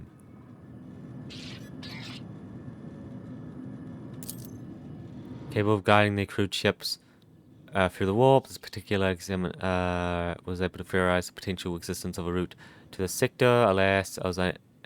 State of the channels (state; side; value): identical; both; correlation 1.00